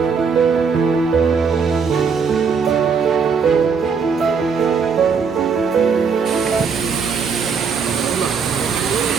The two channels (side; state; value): left; quieter; 5.7 dB